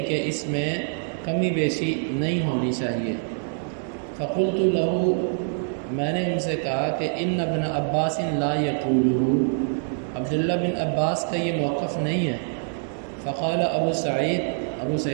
کہ اس میں کمی بیشی نہیں ہونی چاہیے۔ فقلت لہو، میں نے ان سے کہا کہ ان ابن عباس لا یقولہ، عبداللہ بن عباس کا یہ موقف نہیں ہے۔ فقال ابو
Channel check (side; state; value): left; silent; digital silence